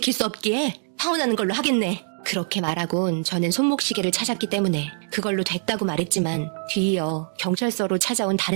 수 없기에 파혼하는 걸로 하겠네. 그렇게 말하곤 저는 손목시계를 찾았기 때문에 그걸로 됐다고 말했지만 뒤이어 경찰서로 찾아온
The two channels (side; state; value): left; silent; digital silence